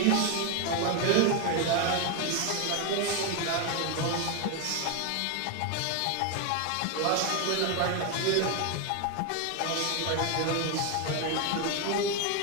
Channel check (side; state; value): both; different; correlation 0.02